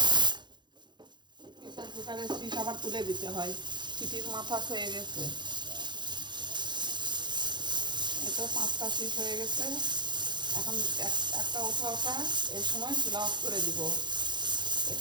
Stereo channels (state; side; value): late; left; 0.22 ms